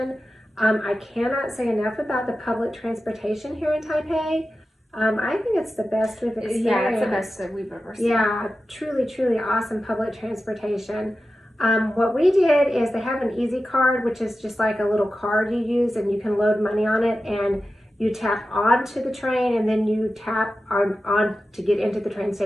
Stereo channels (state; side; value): normal; both; correlation 0.93